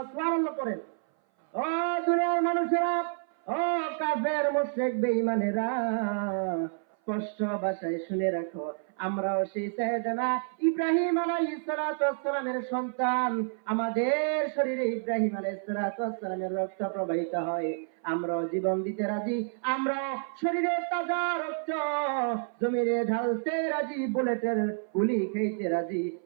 সুবহানাল্লাহ করেন। ও দুনিয়ার মানুষেরা, ও কাফের মুশরিক বেঈমানেরা, স্পষ্ট ভাষায় শুনে রাখো, আমরাও সেই সাইয়েদনা ইব্রাহিম আলাইহিস সালাতু ওয়াস সালামের সন্তান। আমাদের শরীরে ইব্রাহিম আলাইহিস সালাতু ওয়াস সালামের রক্ত প্রবাহিত হয়। আমরাও জীবন দিতে রাজি, আমরাও শরীরের তাজা রক্ত জমিনে ঢালতে রাজি, বুলেটের গুলি খেতে রাজি,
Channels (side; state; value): left; silent; 57 dB below the other